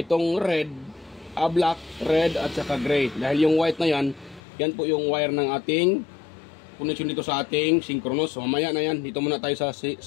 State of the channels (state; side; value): drops out; right; at 4.4 s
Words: itong red, black, red at saka gray. Dahil yung white na yan, yan po yung wire ng ating connection dito sa ating synchronous. So mamaya na yan, dito muna tayo sa